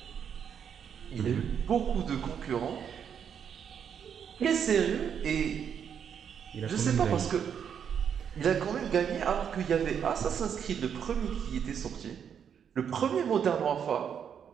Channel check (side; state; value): left; quieter; 7.9 dB